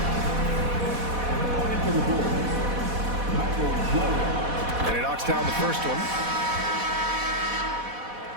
And he knocks down the first one.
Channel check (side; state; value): left; late; 4.1 ms